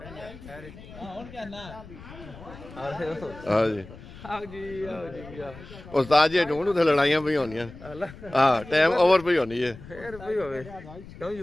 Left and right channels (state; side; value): noise; left; rumble, 17 dB below the sound